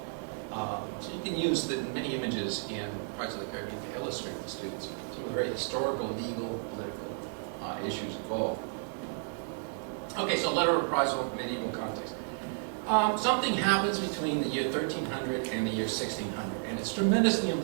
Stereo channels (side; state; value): left; silent; 56 dB below the other